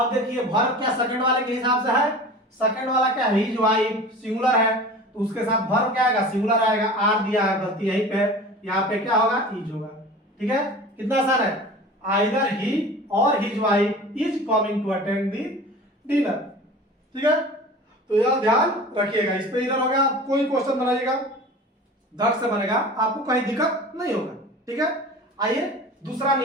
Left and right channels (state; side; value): normal; both; correlation 0.38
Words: देखिए वर्ब क्या सेकंड वाले के हिसाब से है, सेकंड वाला क्या, हिज वाइफ सिंगुलर है, तो उसके साथ वर्ब क्या आएगा, सिंगुलर आएगा, आर दिया है, गलती यहीं पे, यहाँ पे क्या होगा, इज होगा, ठीक है, कितना आसान है, आइदर ही और his wife is coming to attend the dinner, ठीक है। तो यह ध्यान रखिएगा, इस पे ईरर हो गया, कोई क्वेश्चन बनाइएगा धड़ से बनेगा, आपको कहीं दिक्कत नहीं होगा, ठीक है। आइए दूसरा